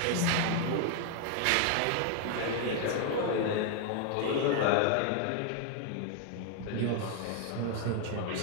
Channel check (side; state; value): both; different; correlation 0.00